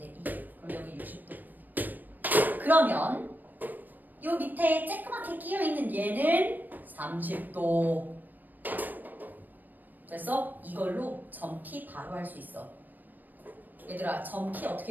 2. 그럼 여기 60도. 그러면 요 밑에 쬐끄맣게 끼어있는 얘는 30도. 됐어? 이걸로 점 P 바로 할 수 있어. 얘들아, 점 P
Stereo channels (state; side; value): late; left; 0.088 ms